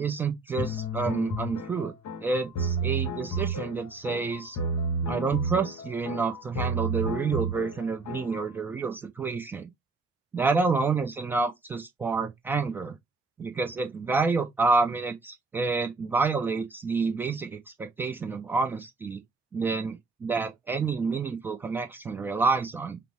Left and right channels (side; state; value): left; quieter; 3.7 dB